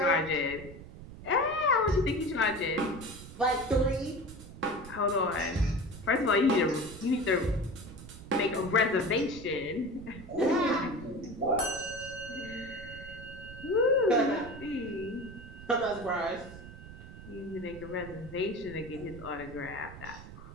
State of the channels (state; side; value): noise; right; rumble, 14 dB below the sound